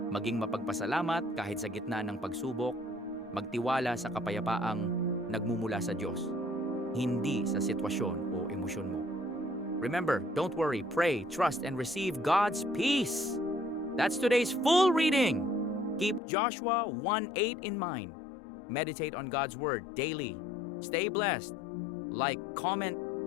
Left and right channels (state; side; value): drops out; right; at 16.2 s